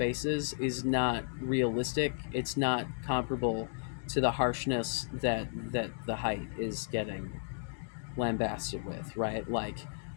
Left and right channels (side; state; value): right; silent; digital silence